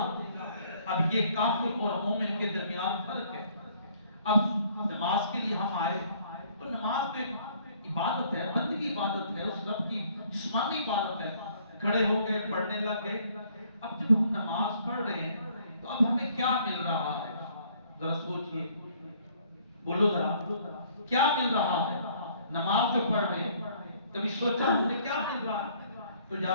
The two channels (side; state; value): both; inverted; correlation -0.61